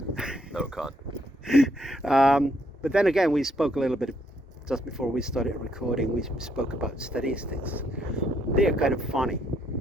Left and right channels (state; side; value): normal; both; correlation 0.72